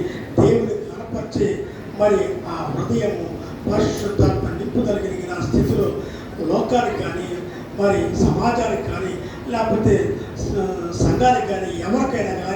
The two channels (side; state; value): both; identical; correlation 1.00